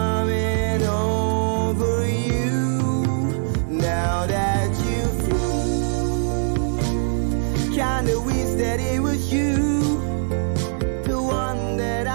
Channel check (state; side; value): silent; left; digital silence